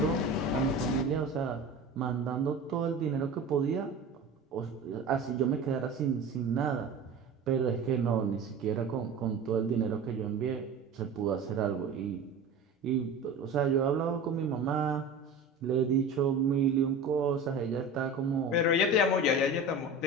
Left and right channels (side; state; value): left; quieter; 3.4 dB